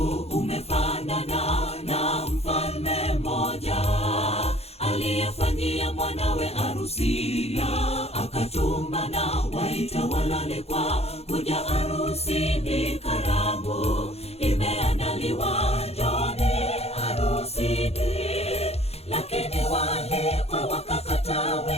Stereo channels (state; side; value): late; right; 0.30 ms